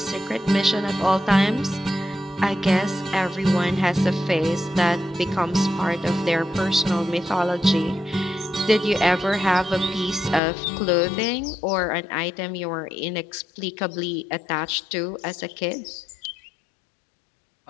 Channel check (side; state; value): right; drops out; at 10.4 s